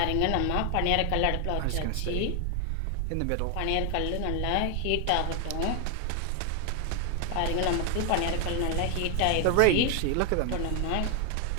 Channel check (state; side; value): different; both; correlation 0.00